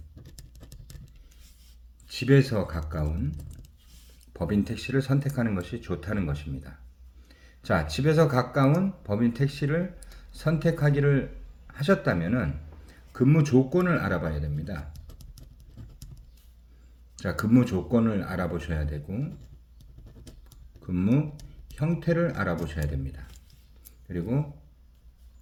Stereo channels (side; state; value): both; identical; correlation 1.00